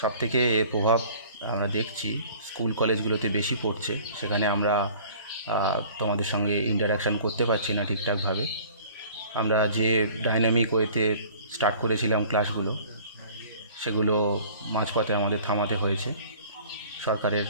সবথেকে এর প্রভাব আমরা দেখছি স্কুল কলেজগুলোতে বেশি পড়ছে। সেখানে আমরা তোমাদের সঙ্গে ইন্টারাকশান করতে পারছি না ঠিকঠাকভাবে। আমরা যে ডাইনামিক ওয়েতে স্টার্ট করেছিলাম ক্লাসগুলো, সেগুলো মাঝপথে আমাদের থামাতে হয়েছে। সরকারের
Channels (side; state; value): both; inverted; correlation -0.49